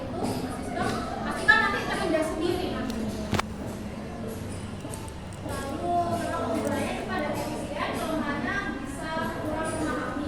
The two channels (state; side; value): identical; both; correlation 1.00